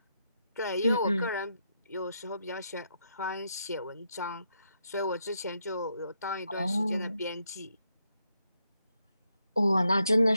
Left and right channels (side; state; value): both; inverted; correlation -0.80